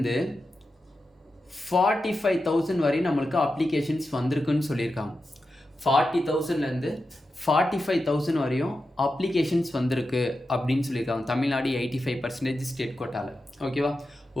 45,000 வரை நம்மளுக்கு அப்ளிகேஷன்ஸ் வந்திருக்குன்னு சொல்லியிருக்காங்க. 40,000லேருந்து 45,000 வரையும் அப்ளிகேஷன்ஸ் வந்திருக்கு அப்படின்னு சொல்லியிருக்காங்க. தமிழ்நாடு 85% ஸ்டேட் கோட்டாவில். ஓகேவா,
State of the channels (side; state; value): both; normal; correlation 0.90